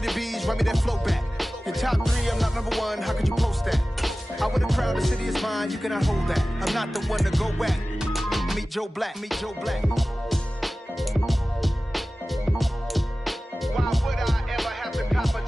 bees, run me that flow back. Your top three, I'm not number one, how could you post that? I would have crowned the city is mine, you cannot hold that. I'm not the one to go back. Meet Joe Black, meet Joe Black. Why would I ever have to cop a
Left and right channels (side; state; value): both; normal; correlation 0.96